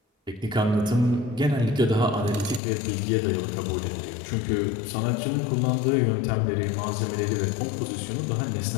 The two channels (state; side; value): drops out; right; at 2.6 s